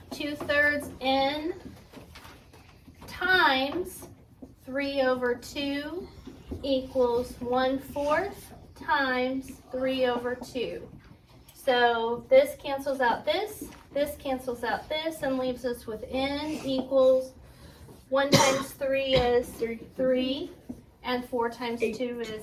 2/3 n times 3/2 equals 1/4 times 3/2. So this cancels out this cancels out this, and leaves us with n equals 1 times 3 is 3, and 4 times 2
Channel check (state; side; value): identical; both; correlation 1.00